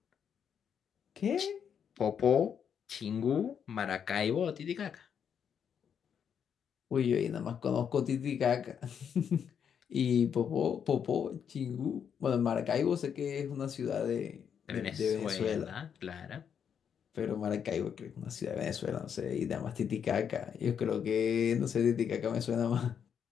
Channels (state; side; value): quieter; right; 7.8 dB